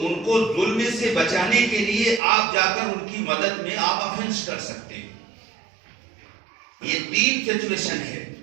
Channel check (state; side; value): drops out; left; at 2.2 s